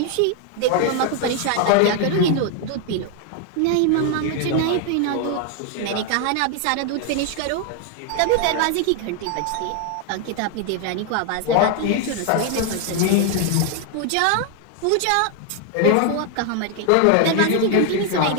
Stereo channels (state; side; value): different; both; correlation 0.00